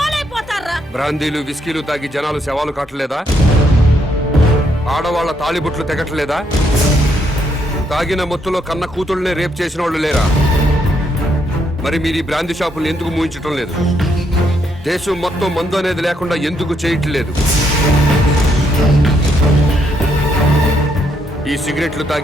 బ్రాందీలు విస్కీలు తాగి జనాలు శవాలు కాటలేదా? ఆడవాళ్ల తాళిబుట్లు తెగట్లేదా? తాగిన మొత్తులో కన్న కూతుళ్ళనే రేప్ చేసిన వాళ్ళు లేరా? మరి మీరు ఈ బ్రాందీ షాపులు ఎందుకు మూయించటం లేదు? దేశం మొత్తం మందు అనేది లేకుండా ఎందుకు చేయట్లేదు? ఈ సిగరెట్లు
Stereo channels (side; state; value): both; normal; correlation 0.75